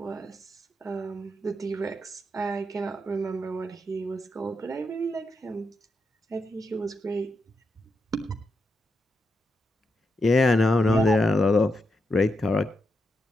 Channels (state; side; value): normal; both; correlation 0.84